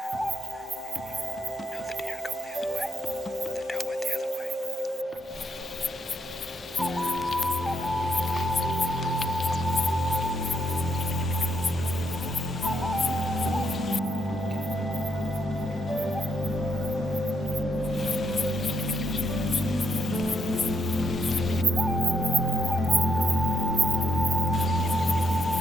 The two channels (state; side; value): normal; both; correlation 0.76